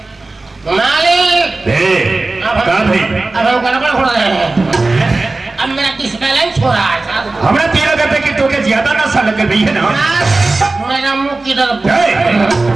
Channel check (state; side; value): quieter; left; 3.3 dB